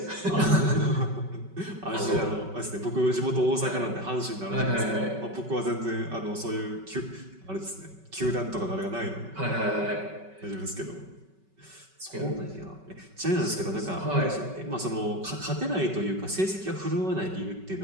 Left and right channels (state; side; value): late; left; 5.3 ms